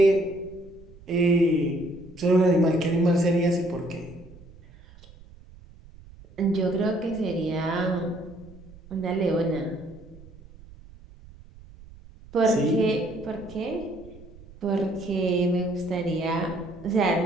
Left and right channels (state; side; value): noise; right; rumble, 21 dB below the sound